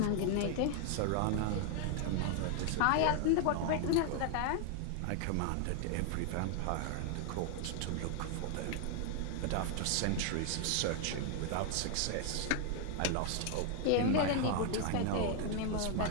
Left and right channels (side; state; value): both; different; correlation 0.00